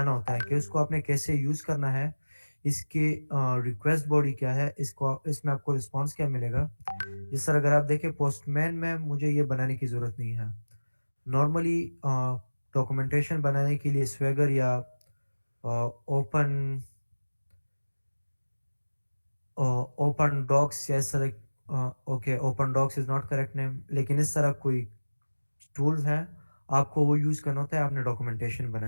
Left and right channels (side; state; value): both; inverted; correlation -1.00